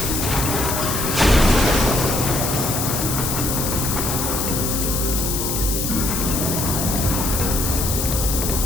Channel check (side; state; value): left; noise; hiss, 2 dB below the sound